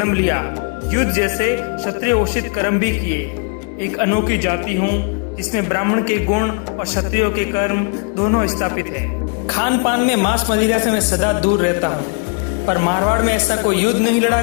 लिया, युद्ध जैसे क्षत्रिय उचित कर्म भी किए। एक अनोखी जाति हूँ जिसमें ब्राह्मण के गुण और क्षत्रियों के कर्म दोनों स्थापित हैं। खान पान में मांस मदिरा से मैं सदा दूर रहता हूँ, पर मारवाड़ में ऐसा कोई युद्ध नहीं लड़ा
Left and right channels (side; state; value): right; quieter; 38.1 dB